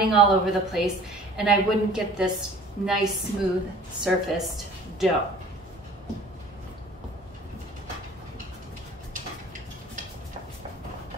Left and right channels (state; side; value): normal; both; correlation 0.48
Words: all over the place and I wouldn't get this nice, smooth, surfaced dough.